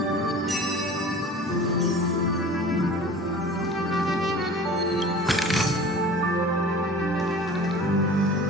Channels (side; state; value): both; normal; correlation 0.41